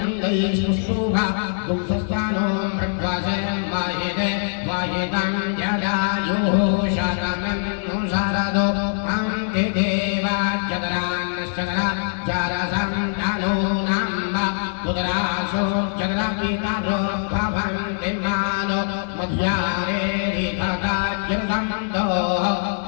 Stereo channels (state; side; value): silent; right; digital silence